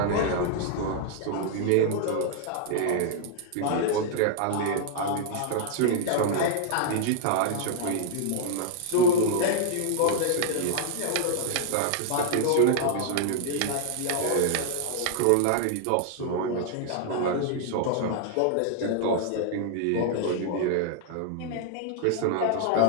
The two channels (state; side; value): different; both; correlation -0.01